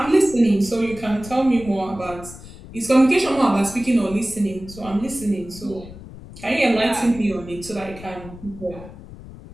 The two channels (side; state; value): left; noise; rumble, 16 dB below the sound